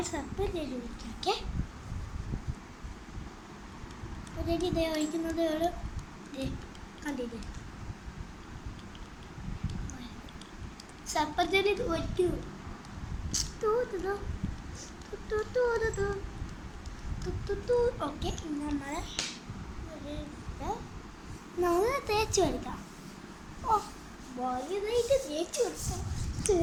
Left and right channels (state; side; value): identical; both; correlation 1.00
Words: സ്റ്റപ്പല്ലിൽ വിളിക്കാം. ഓക്കെ, ഇതേ ഒഴിക്കുന്നത് ഒരു കണ്ടില്ലേ, സർപ്പത്തിൽ ഒറ്റ ഓക്കെ. നമ്മൾ തേച്ച് കൊടുക്കാം. ഓ, വലുതായിട്ട് തേച്ച് കൊടുക്കാം.